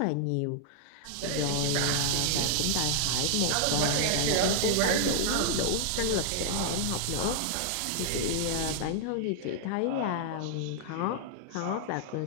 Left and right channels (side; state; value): both; different; correlation -0.01